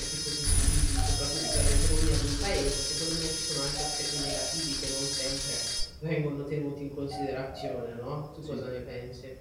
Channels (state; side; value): identical; both; correlation 1.00